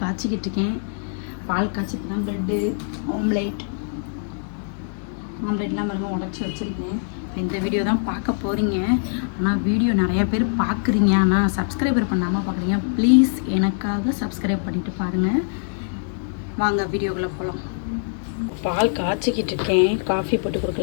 காய்ச்சிக்கிட்டு இருக்கேன். பால் காய்ச்சிட்டு தான் ப்ரெட்டு ஆம்லேட்லாம் பாருங்க உடச்சி வச்சுருக்கேன். இந்த வீடியோ தான் பார்க்க போகிறீங்க. ஆனால் வீடியோ நிறையா பேர் பார்க்குறீங்க, ஆனால் சப்ஸ்கிரைபர் பண்ணாமல் பார்க்குறீங்க. ப்ளீஸ் எனக்காக சப்ஸ்கிரைப் பண்ணிவிட்டு பாருங்கள். வாங்க வீடியோக்குள்ளே போகலாம். பால் காய்ச்சிக்கிட்டு இருக்கேன். காஃபி போட்டு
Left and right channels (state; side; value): silent; right; 63 dB below the other